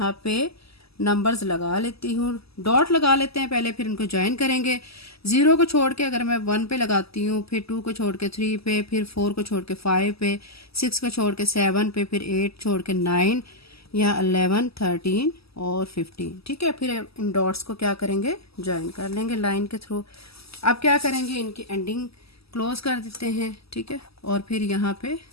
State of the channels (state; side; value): late; right; 0.77 ms